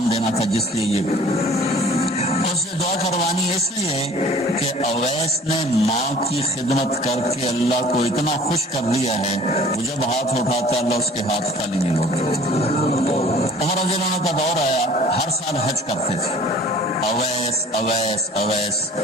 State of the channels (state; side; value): normal; both; correlation 0.48